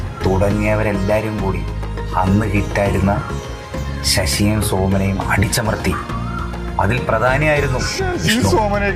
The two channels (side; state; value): both; identical; correlation 1.00